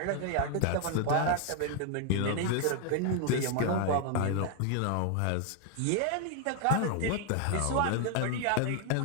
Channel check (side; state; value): both; different; correlation 0.00